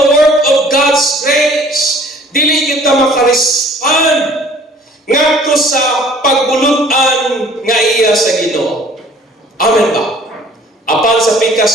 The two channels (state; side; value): normal; both; correlation 0.54